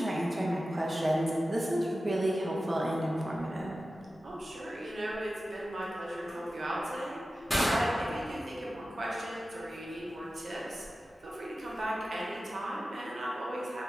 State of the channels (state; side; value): normal; both; correlation 0.94